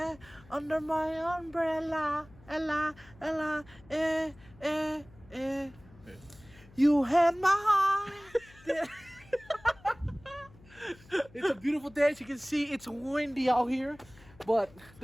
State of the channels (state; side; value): noise; left; hum, 24 dB below the sound